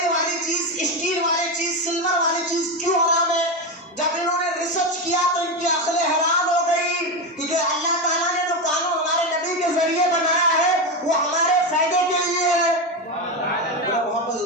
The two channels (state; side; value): normal; both; correlation 0.14